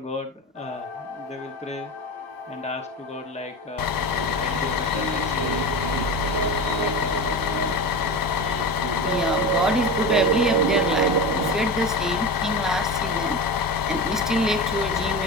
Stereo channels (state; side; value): normal; both; correlation 0.26